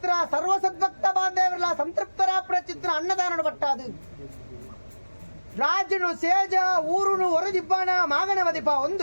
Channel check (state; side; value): inverted; both; correlation -1.00